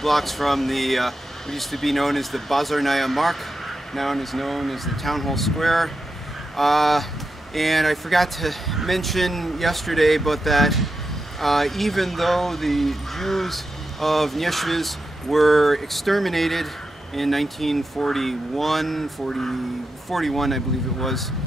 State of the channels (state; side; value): normal; both; correlation 0.88